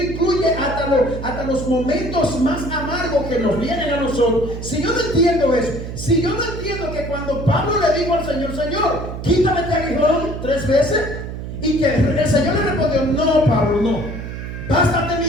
incluye hasta los momentos más amargos que nos vienen a nosotros. Si yo no entiendo eso, si yo no entiendo que cuando Pablo le dijo al Señor, Señor, quítame este aguijón 3 veces, y que el Señor le respondió, no, Pablo, no, bástate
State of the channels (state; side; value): noise; right; hum, 8 dB below the sound